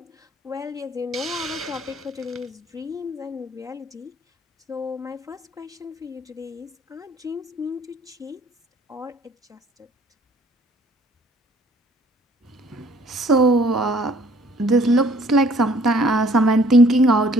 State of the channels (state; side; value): normal; both; correlation 0.58